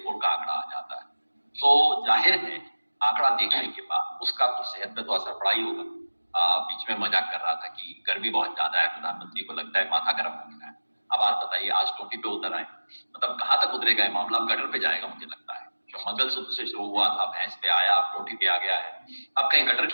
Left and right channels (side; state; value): both; inverted; correlation -1.00